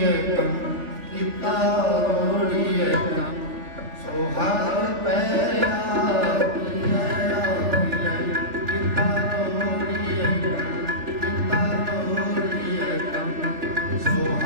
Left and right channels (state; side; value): late; left; 3.4 ms